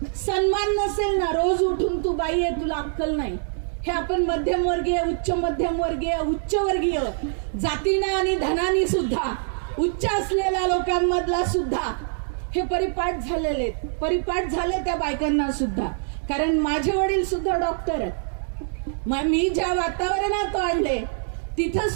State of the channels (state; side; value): silent; left; digital silence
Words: सन्मान नसेल ना, रोज उठून तू बाई आहे, तुला अक्कल नाही, हे आपण मध्यमवर्गीय, उच्च मध्यमवर्गीय, उच्चवर्गीय जातीनं आणि धनानी सुद्धा, उच्च असलेल्या लोकांमधला सुद्धा हे परिपाठ झाले त्या बायकांना सुद्धा. कारण माझे वडील सुद्धा डॉक्टर आहेत, मी ज्या वातावरणात वाढले तिथं